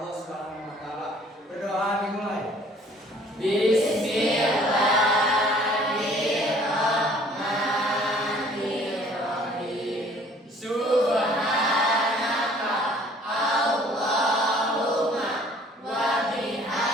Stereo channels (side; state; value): both; normal; correlation 0.55